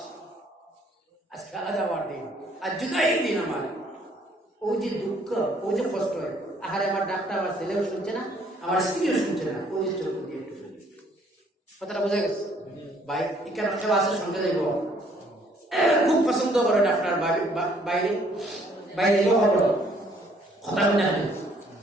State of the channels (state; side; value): normal; both; correlation 0.63